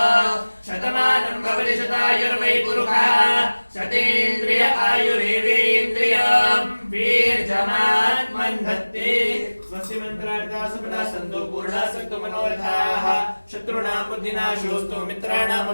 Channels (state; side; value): inverted; both; correlation -1.00